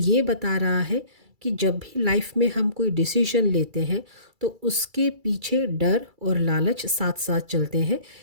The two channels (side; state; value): left; late; 2.3 ms